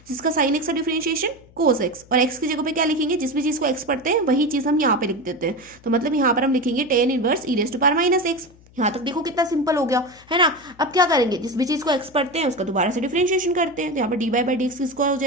जिसका साइन एक्स का डिफरेंशिएशन कोस एक्स, और एक्स की जगह पे क्या लिखेंगे, जिस भी चीज को एक्स पढ़ते हैं वही चीज हम यहाँ पे लिख देते हैं। तो मतलब यहाँ पर हम लिखेंगे tan inverse e raise to power minus x. यहाँ तक देखो कितना सिंपल हो गया, है ना। अब क्या करेंगे, जिस भी चीज को एक्स पढ़ते हैं उसका दोबारा से डिफरेंशिएशन करते हैं। तो यहाँ पर d y by d x किसका हो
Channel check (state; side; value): noise; left; hum, 26 dB below the sound